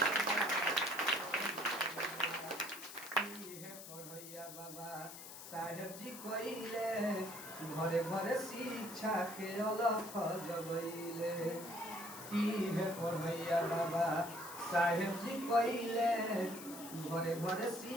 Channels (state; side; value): noise; left; hiss, 12 dB below the sound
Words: बाबा साहेब जी कइले घरे घरे शिक्षा के अलख जगइले, की है पढ़ैया बाबा साहेब जी कइले घरे घरे